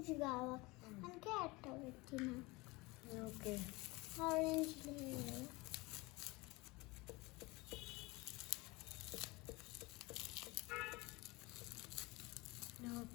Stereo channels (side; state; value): right; quieter; 23.7 dB